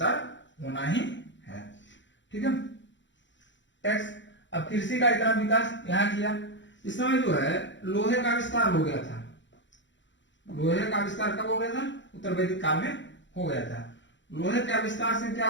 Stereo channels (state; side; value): late; right; 0.54 ms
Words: होना ही है। ठीक है, टैक्स। अब कृषि का इतना विकास यहाँ किया, इस समय जो है लोहे का विस्तार हो गया था। लोहे का विस्तार कब हो गया था, उत्तर वैदिक काल में हो गया था। लोहे के विस्तार से क्या